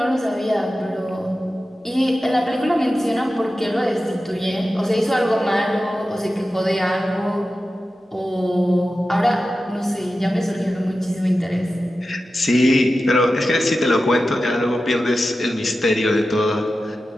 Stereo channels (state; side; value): normal; both; correlation 0.93